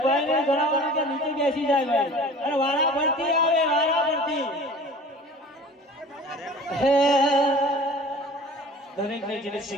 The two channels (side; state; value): both; normal; correlation 0.43